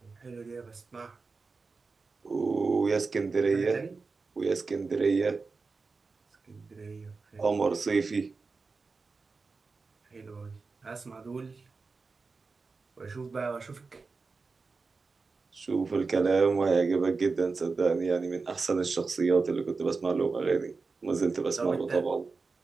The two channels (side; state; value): left; quieter; 4.3 dB